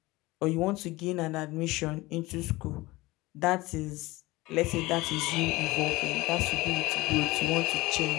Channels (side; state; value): right; quieter; 20.5 dB